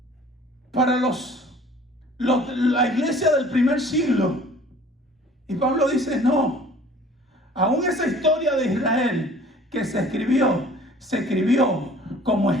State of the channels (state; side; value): normal; both; correlation 0.50